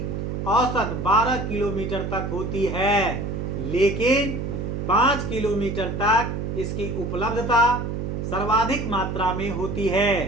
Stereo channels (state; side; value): noise; right; hum, 3 dB below the sound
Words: औसत 12 किलोमीटर तक होती है, लेकिन 5 किलोमीटर तक इसकी उपलब्धता सर्वाधिक मात्रा में होती